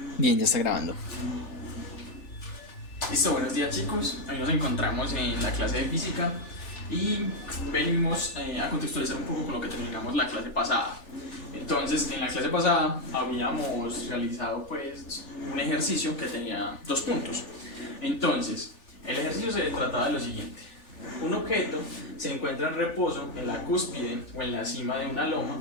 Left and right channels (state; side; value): late; right; 3.4 ms